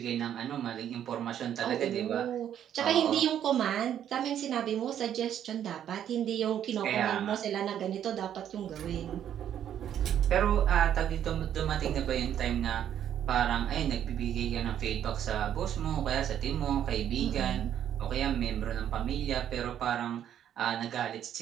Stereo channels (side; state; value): left; quieter; 10.1 dB